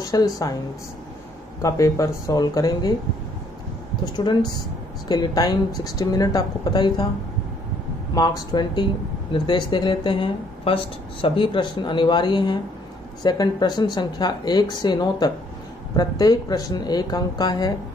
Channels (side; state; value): both; normal; correlation 0.65